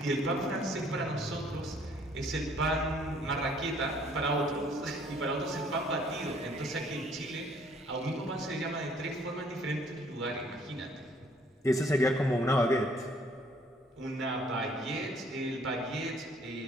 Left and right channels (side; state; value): both; normal; correlation 0.61